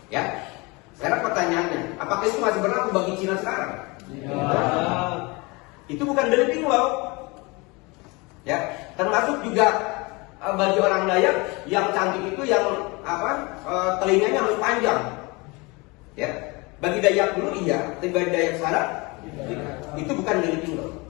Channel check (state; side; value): quieter; right; 26.3 dB